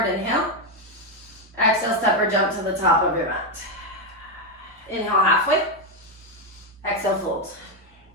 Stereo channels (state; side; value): normal; both; correlation 0.05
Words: inhale. Exhale, step or jump to the top of your mat. Inhale, halfway. Exhale, fold.